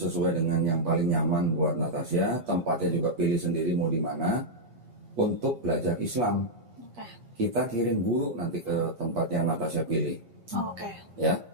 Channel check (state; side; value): late; left; 8.4 ms